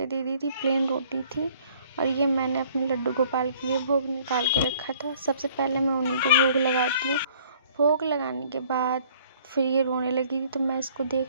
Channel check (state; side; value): inverted; both; correlation -0.58